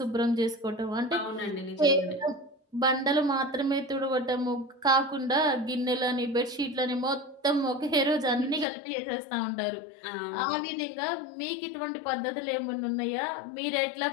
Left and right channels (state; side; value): drops out; right; at 8.7 s